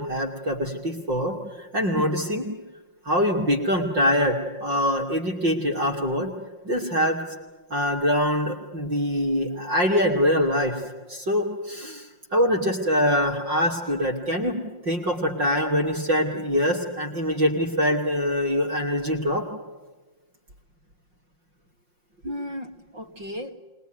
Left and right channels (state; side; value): late; left; 5.6 ms